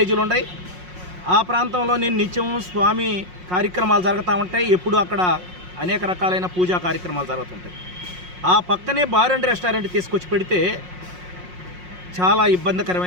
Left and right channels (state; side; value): late; left; 5.5 ms